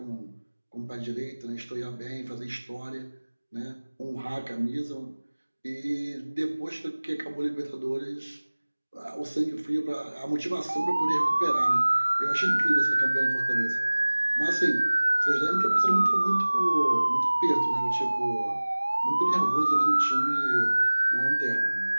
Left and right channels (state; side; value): inverted; both; correlation -1.00